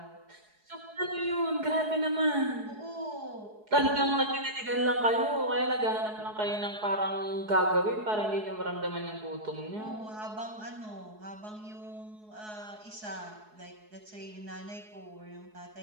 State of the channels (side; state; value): left; late; 4.7 ms